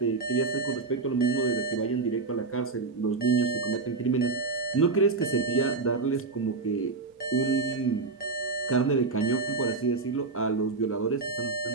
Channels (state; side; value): quieter; left; 4.0 dB